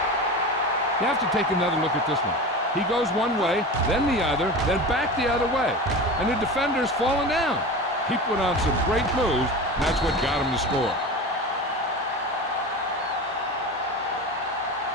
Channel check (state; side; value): normal; both; correlation 0.30